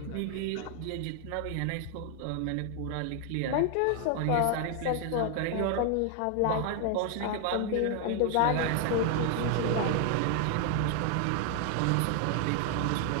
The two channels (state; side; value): different; both; correlation 0.00